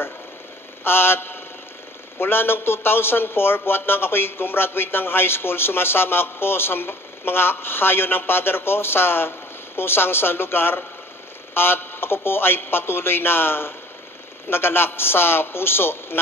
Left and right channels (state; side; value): normal; both; correlation 0.50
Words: At mula ng 2004, buhat nang ako'y gumraduate ng high school, sumasama ako sa mga hayo ng father ko sa kung saan sa lugar. At ako po ay patuloy na nagalak sa puso